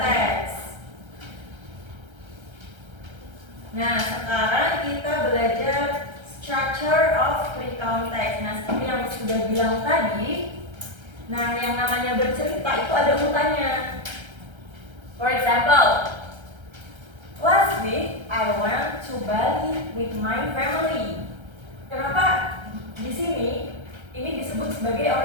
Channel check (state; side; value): late; left; 1.3 ms